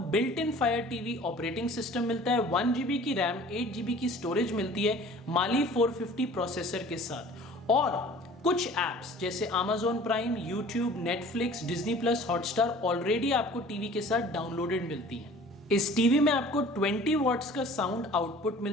built in fire TV operating system मिलता है, 1 GB की रैम, 8 GB की स्टोरेज मिलती है माली 450 प्रोसेसर के साथ। और कुछ एप्स जैसे Amazon prime, YouTube, Netflix, Disney plus, Hotstar already आपको टीवी के साथ डाउनलोडेड मिलती हैं। इस टीवी में आपको 20 वॉट्स का साउंड आउटपुट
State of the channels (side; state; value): both; normal; correlation 0.47